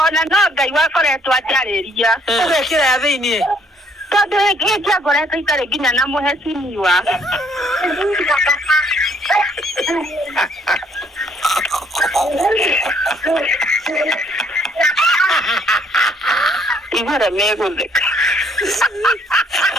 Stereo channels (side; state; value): both; normal; correlation 0.65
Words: no Ngai wakoretwo ajariria. Ugekira ya thiini. Tondu giki akoretwo itare nginya na muhecimiwa. Igora megutheka.